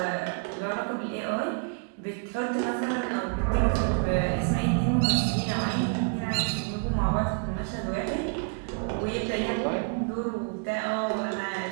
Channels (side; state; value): left; quieter; 36.9 dB